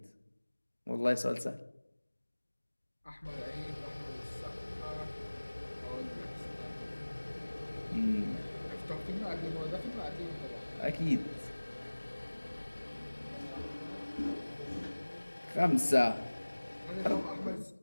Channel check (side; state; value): both; inverted; correlation -1.00